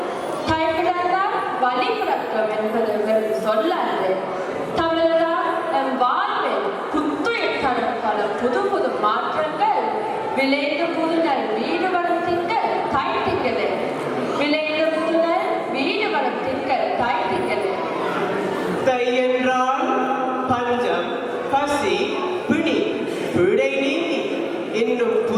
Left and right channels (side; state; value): both; identical; correlation 1.00